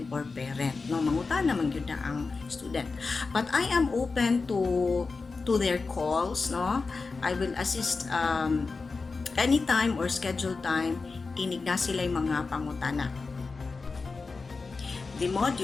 or parent. No, mangutan naman yun na ang student. But I am open to their calls. No, I will assist anytime or schedule time. Inig na sila yung mga pangutana. The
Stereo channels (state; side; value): quieter; right; 4.2 dB